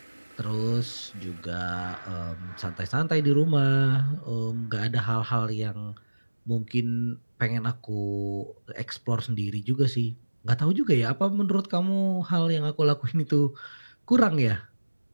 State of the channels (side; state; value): both; inverted; correlation -1.00